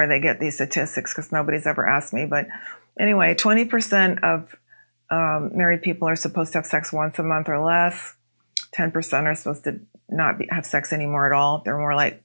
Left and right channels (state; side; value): inverted; both; correlation -1.00